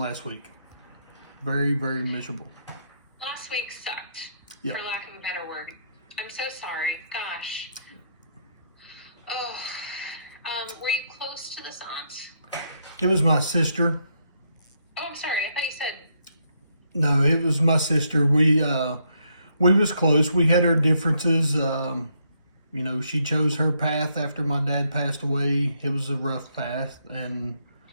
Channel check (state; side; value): inverted; both; correlation -0.75